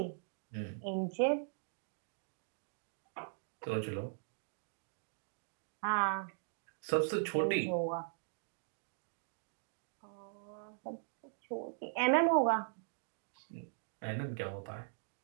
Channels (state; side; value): silent; left; digital silence